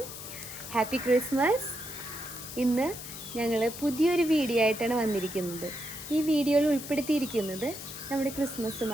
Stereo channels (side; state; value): left; noise; hiss, 11 dB below the sound